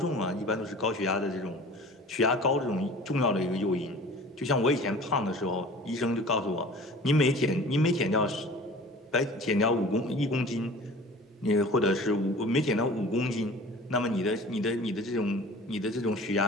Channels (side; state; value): both; normal; correlation 0.43